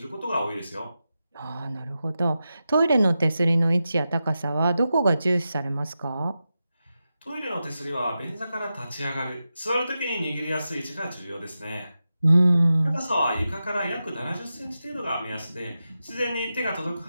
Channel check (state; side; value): inverted; both; correlation -0.91